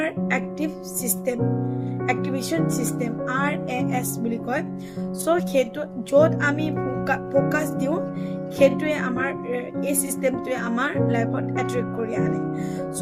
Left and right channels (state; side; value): identical; both; correlation 1.00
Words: active system activation system RAS বুলি কয় সো সেইটো য'ত আমি ফোকাস দিওঁ সেইটোৱে আমাৰ এই সিস্টেমটোৱে আমাৰ লাইফত এট্ৰেক্ট কৰি আনে